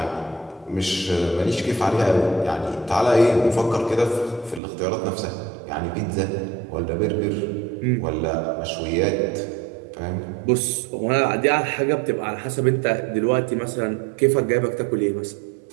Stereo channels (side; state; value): left; drops out; at 4.6 s